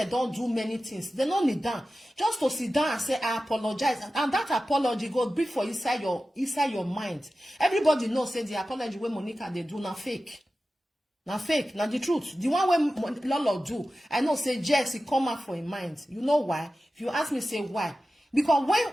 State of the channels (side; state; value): both; normal; correlation 0.94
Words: don't do many things. They don't need down. Just to sit down and say, I apologize. And that apology goes big for inside your mind. Everybody knows say the apology where Monica they do not fake. Now fake, now the truth. The one where Lolo do, I know say Jess, it come out for his mind. You know why? If you ask me, say why? Because